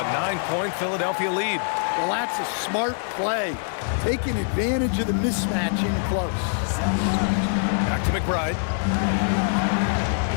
a 9-point Philadelphia lead. Well, that's a smart play, taking advantage of the mismatch in close. Back to McBride.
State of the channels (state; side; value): silent; right; digital silence